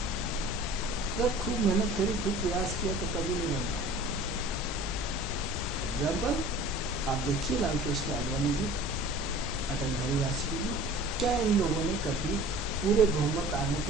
जब खूब मेहनत करी, खूब प्रयास किया तो कभी नहीं बन पाए। एग्जाम्पल आप देखिए, लाल कृष्ण आडवाणी जी, अटल बिहारी वाजपेयी जी, क्या इन लोगों ने कभी पूरे बहुमत आने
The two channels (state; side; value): normal; both; correlation 0.44